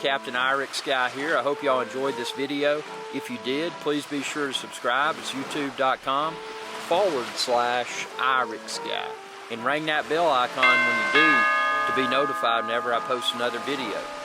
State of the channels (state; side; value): identical; both; correlation 1.00